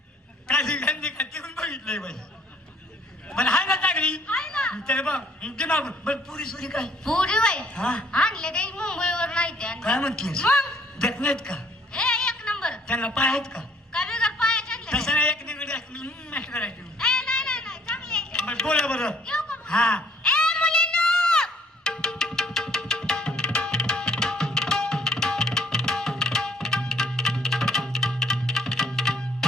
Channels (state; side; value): normal; both; correlation 0.62